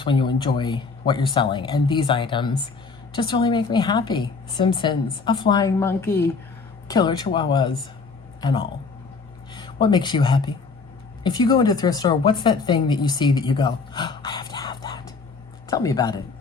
when you enjoy what you're selling. And these items just really make me happy. Simpsons, a flying monkey, killer chihuahuas, and all. What makes you happy? If you go into a thrift store, what's that thing that you see that you go, oh, I have to have that? Tell me about it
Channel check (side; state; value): right; quieter; 4.6 dB